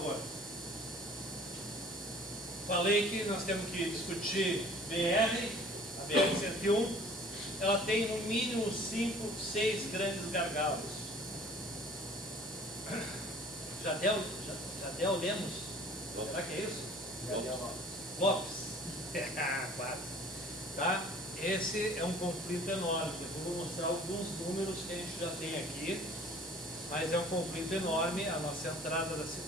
Falei que nós temos que discutir BR, a BR-101. Ela tem no mínimo 5, 6 grandes gargalos. Jadel Lemos? Será que é isso? Lopes. Claro. Tá? Esse é um conflito enorme. Eu vou mostrar alguns números que a gente já tem aqui, mas é um conflito enorme a nossa entrada da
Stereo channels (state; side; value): normal; both; correlation 0.50